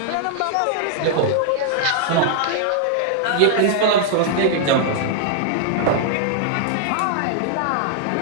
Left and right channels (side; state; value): both; different; correlation -0.01